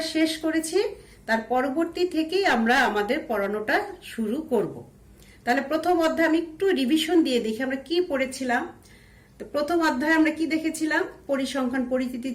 শেষ করেছি তার পরবর্তী থেকেই আমরা আমাদের পড়ানোটা শুরু করব। তাহলে প্রথম অধ্যায় আমি একটু রিভিশন দিয়ে দেখি আমরা কি পড়েছিলাম। তো প্রথম অধ্যায়ে আমরা কি দেখেছিলাম, পরিসংখ্যান পরিচিতি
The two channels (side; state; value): both; identical; correlation 1.00